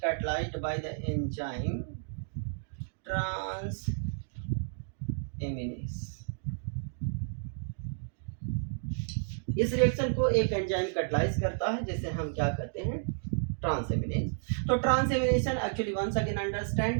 by the enzyme transaminase. इस रिएक्शन को एक एंजाइम कैटलाइज करता है जिसे हम क्या कहते हैं, ट्रांसएमिनेस। तो transamination actually once again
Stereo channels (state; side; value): silent; left; digital silence